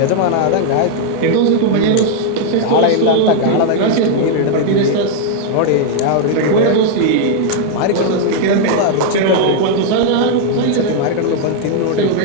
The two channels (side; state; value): both; different; correlation 0.00